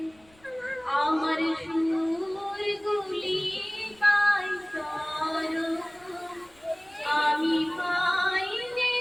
আমার সুরগুলি পাই করো, আমি পাই যে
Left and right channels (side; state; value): left; noise; rumble, 30 dB below the sound